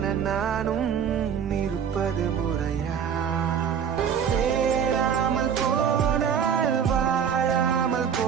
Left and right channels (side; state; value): left; quieter; 7.7 dB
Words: நானும் இருப்பது முறையா சேராமல் போனால் வாழாமல்